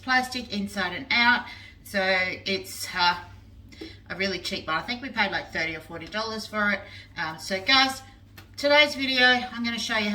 inside and out, so it's a really cheap one. I think we paid like $30 or $40 for it. So guys, today's video I'm going to show you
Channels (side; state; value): both; identical; correlation 1.00